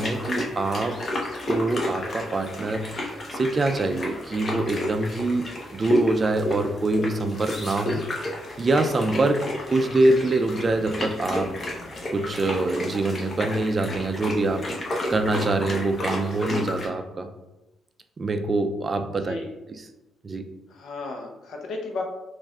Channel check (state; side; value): normal; both; correlation 0.83